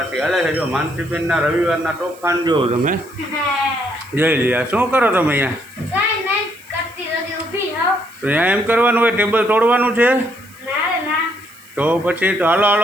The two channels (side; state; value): right; noise; hiss, 24 dB below the sound